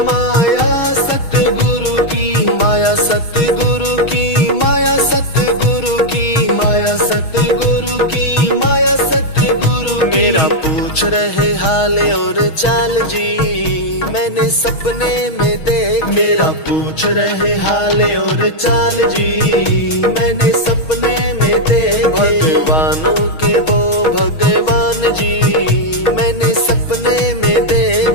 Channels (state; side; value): late; right; 6.3 ms